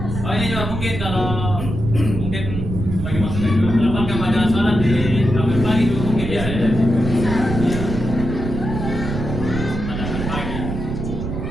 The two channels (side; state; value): right; noise; rumble, 5 dB below the sound